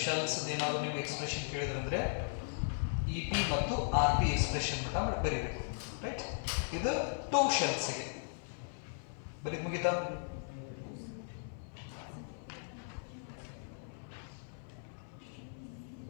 shells ಅದೇನಾದರೂ ನಿಮಗೆ ಎಕ್ಸ್ಪ್ರೆಷನ್ ಕೇಳಿದ್ರಂದ್ರೆ EP ಮತ್ತು RP expression ಮಟ್ಟ ಬರೀಬೇಕು, ರೈಟ್. ಇದು two shells ಗೆ ಬರೀ ಮುಗಿತಾ.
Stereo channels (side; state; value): right; silent; 53 dB below the other